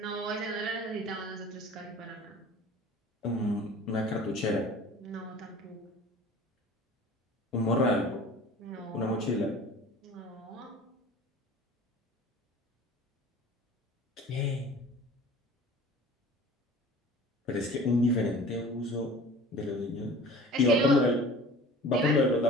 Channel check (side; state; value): both; normal; correlation 0.43